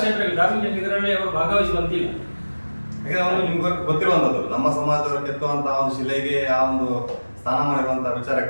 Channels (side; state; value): both; inverted; correlation -1.00